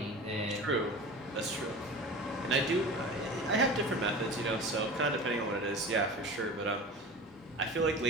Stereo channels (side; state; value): both; normal; correlation 0.34